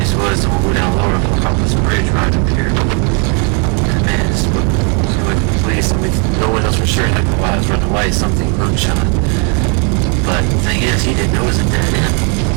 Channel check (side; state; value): left; quieter; 34.1 dB